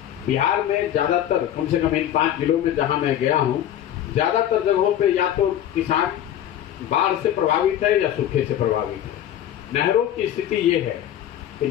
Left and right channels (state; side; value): quieter; right; 11.1 dB